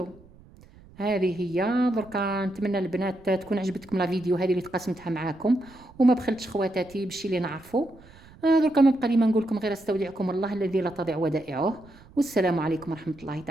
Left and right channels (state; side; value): noise; right; rumble, 24 dB below the sound